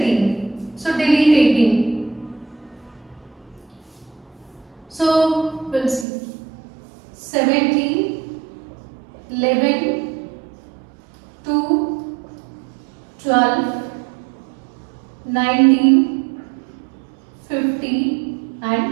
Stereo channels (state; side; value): drops out; left; at 6.1 s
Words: So delete 18. So we'll see 17, 11, 2, 12, 19, 50